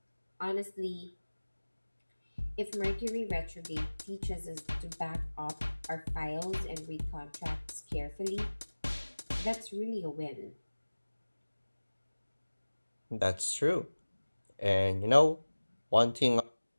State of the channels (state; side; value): inverted; both; correlation -1.00